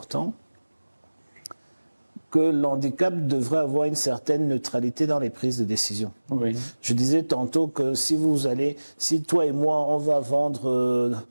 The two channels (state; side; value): inverted; both; correlation -1.00